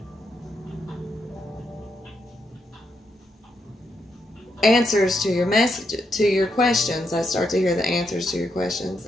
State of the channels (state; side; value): normal; both; correlation 0.80